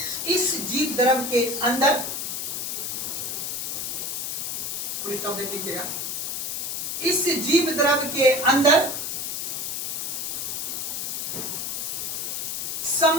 इस जीव द्रव्य के अंदर, स्टॉप देख लीजिएगा, इस जीव द्रव्य के अंदर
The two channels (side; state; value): left; noise; hiss, 3 dB below the sound